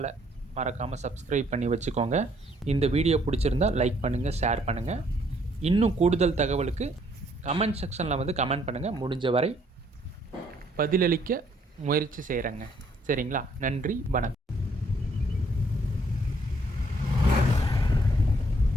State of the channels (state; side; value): normal; both; correlation 0.66